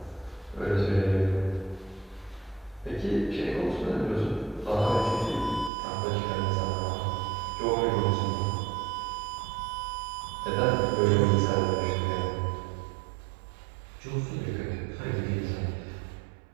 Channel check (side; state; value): left; drops out; at 5.7 s